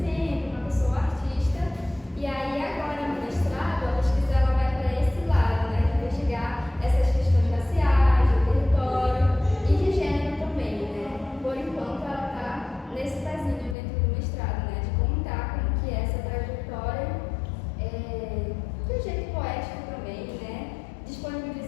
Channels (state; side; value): drops out; right; at 13.8 s